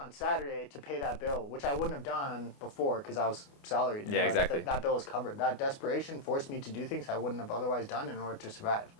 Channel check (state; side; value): late; right; 29 ms